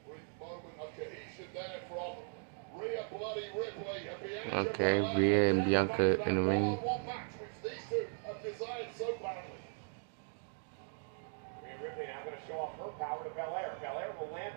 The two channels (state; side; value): silent; left; 52 dB below the other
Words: With moment of cohesion there from Rhea Bloody Ripley and Bianca. Okay, Rhea and Bianca in the ring. One match which these two have desired so badly. Rhea Ripley now going to show off her power to Belair. Belair will